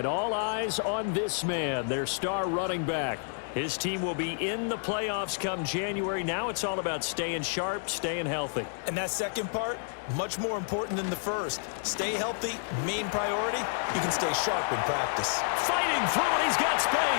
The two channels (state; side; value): silent; right; digital silence